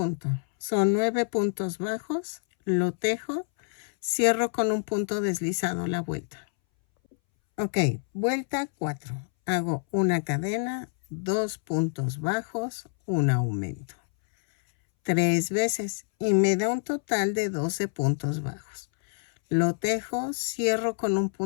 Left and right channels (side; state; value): right; silent; 60 dB below the other